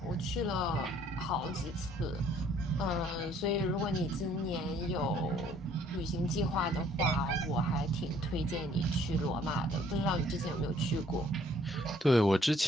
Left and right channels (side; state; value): both; normal; correlation 0.61